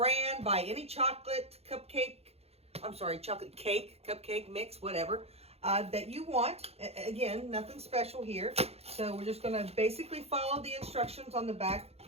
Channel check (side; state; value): left; late; 0.30 ms